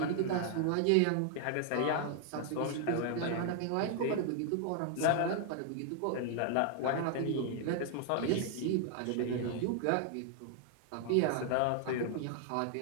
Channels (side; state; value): both; different; correlation 0.00